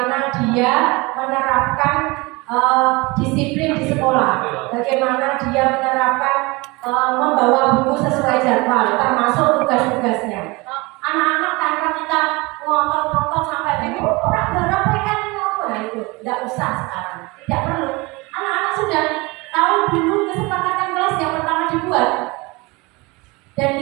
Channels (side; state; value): left; quieter; 24.7 dB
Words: dia menerapkan disiplin di sekolah, bagaimana dia menerapkan membawa buku sesuai jadwal, termasuk tugas-tugasnya. Anak-anak tanpa kita ngotot-ngotot sampai ini orang berapa kan nah itu tidak usah sekarang, tidak perlu. Anak-anak sudah tahu dulu kesepakatan kelas yang pertama dibuat, dan